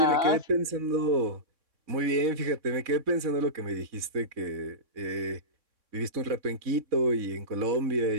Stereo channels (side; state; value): left; late; 3.6 ms